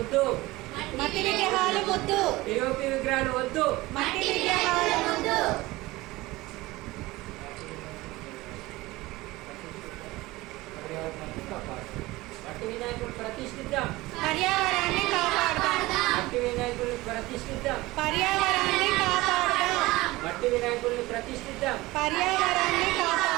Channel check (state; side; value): quieter; left; 19.8 dB